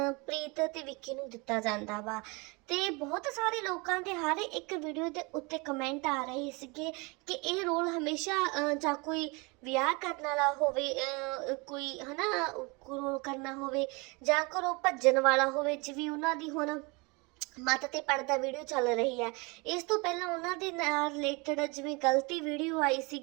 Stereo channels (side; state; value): left; quieter; 28.1 dB